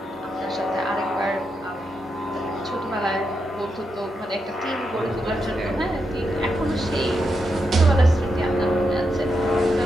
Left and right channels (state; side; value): normal; both; correlation 0.84